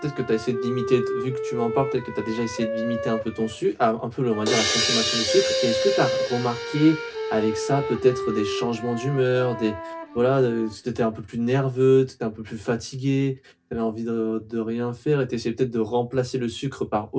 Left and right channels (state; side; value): identical; both; correlation 1.00